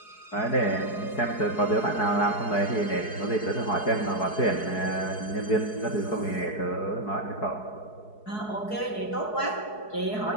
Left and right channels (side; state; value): right; late; 4.7 ms